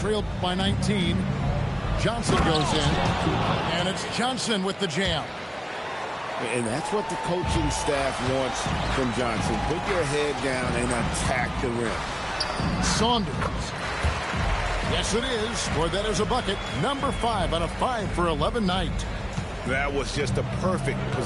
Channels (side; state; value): both; identical; correlation 1.00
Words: by 19. Johnson goes in. And it's Johnson with the jam. And that's what the coaching staff wants from Johnson. Put your head down and attack the rim. Saunders. Yes, it is. For that is a bucket. Number 5 on a 5 for 11 night. That was just a perfect